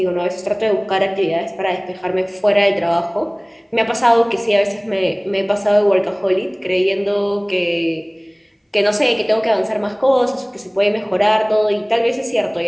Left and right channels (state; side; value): identical; both; correlation 1.00